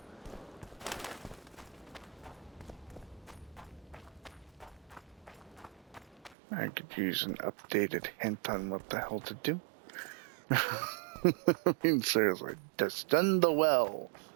I could use an updated hint on what the hell to do. I mean, seriously, descend the well.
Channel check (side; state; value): left; drops out; at 6.4 s